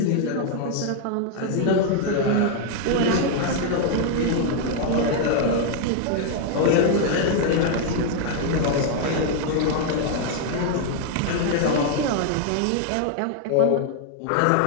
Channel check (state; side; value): different; both; correlation 0.00